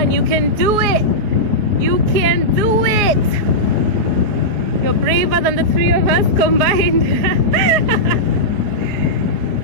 you can do it! You can do it! You're braver than the three of us combined.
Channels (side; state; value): left; late; 4.8 ms